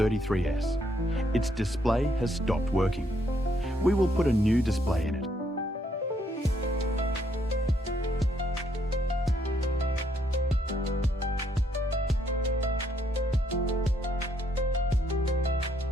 Its display has stopped working. We will put a new display in it.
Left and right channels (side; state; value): both; normal; correlation 0.73